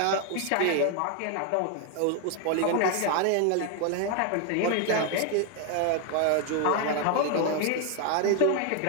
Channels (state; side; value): different; both; correlation 0.01